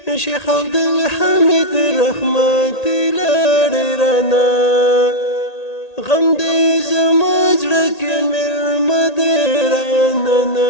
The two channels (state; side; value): late; right; 1.8 ms